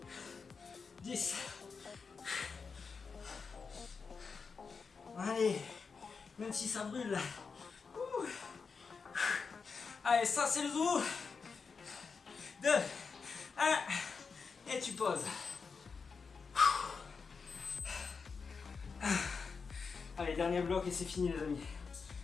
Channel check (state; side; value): quieter; right; 5.2 dB